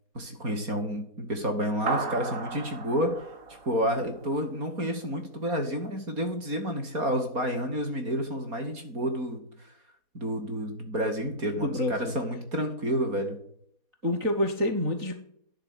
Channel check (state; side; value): late; left; 4.3 ms